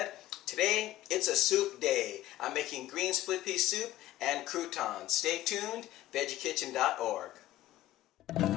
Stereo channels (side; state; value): right; quieter; 14.6 dB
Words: Today it's a soup day. I'm making green split pea soup and croutons. Stay tuned, veggiekitchen.org.